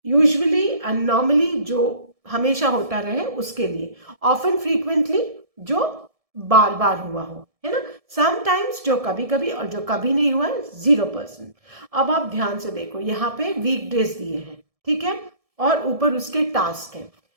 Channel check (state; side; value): late; left; 1.7 ms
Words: यूजुअली एंड नॉर्मली जो हमेशा होता रहे उसके लिए. ऑफन, फ्रीक्वेंटली जो बार बार हुआ हो, है ना. समटाइम्स जो कभी कभी, और जो कभी नहीं हुआ है 0%. अब आप ध्यान से देखो, यहाँ पे वीकडेज दिए हैं, ठीक है, और ऊपर उसके टास्क हैं.